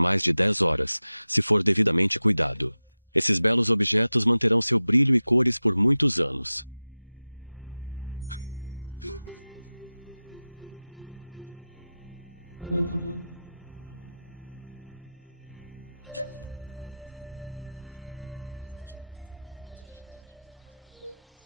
de 10 horas, se for devidamente cuidado. Esses belos objetos manterão seu brilho e cores por muitos anos.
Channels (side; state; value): both; inverted; correlation -0.96